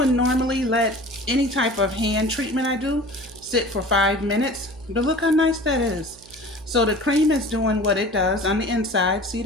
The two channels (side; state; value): right; noise; hum, 24 dB below the sound